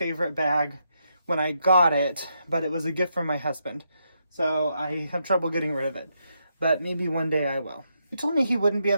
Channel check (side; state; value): both; inverted; correlation -0.80